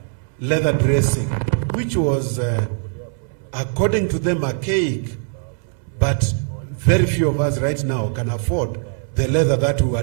dressing, which was, according to them, archaic, but very few of us right now can afford the leather that we were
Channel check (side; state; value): left; silent; 65 dB below the other